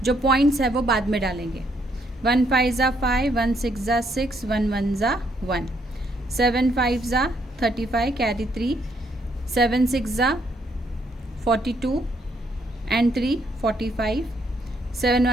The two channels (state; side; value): normal; both; correlation 0.72